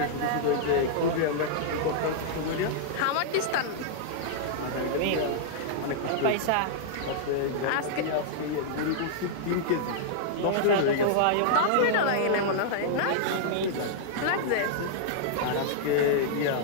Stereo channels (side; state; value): both; different; correlation -0.02